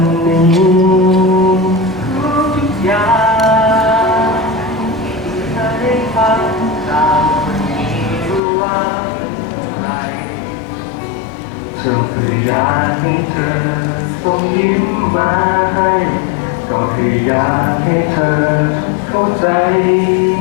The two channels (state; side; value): drops out; right; at 8.4 s